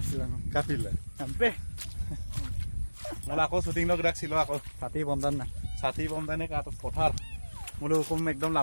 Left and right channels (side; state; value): both; inverted; correlation -1.00